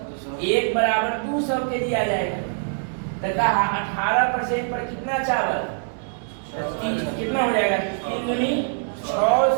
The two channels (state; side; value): silent; left; 63 dB below the other